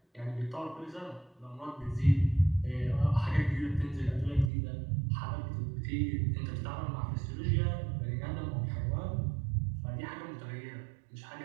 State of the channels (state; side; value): drops out; left; at 4.5 s